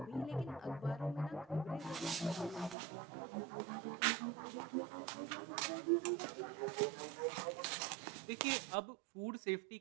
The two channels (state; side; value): drops out; left; at 2.8 s